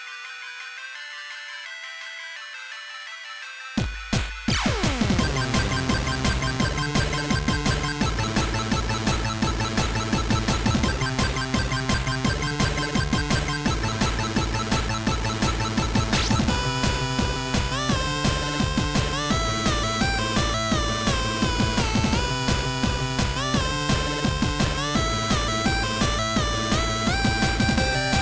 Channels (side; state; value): both; identical; correlation 1.00